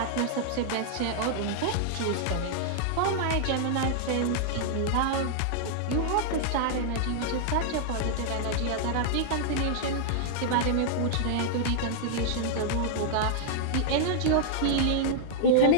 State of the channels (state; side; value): different; both; correlation -0.01